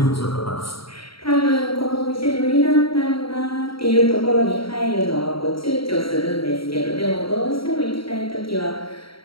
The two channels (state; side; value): late; right; 0.75 ms